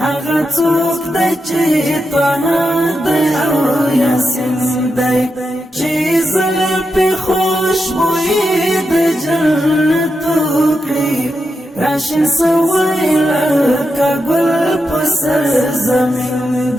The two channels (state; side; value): normal; both; correlation 0.87